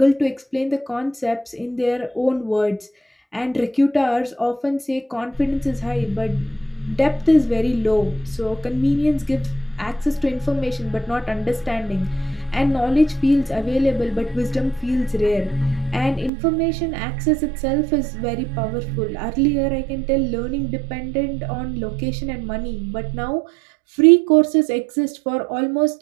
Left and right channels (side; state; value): left; drops out; at 16.3 s